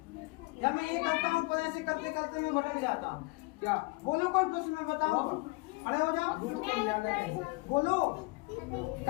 या मैं ये करता हूँ पर ऐसे करते करते मैं भटक जाता हूँ? क्या बोलो, कोई प्रश्न में बताओ, खड़े हो जाओ, बोलो।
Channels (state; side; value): quieter; right; 26.5 dB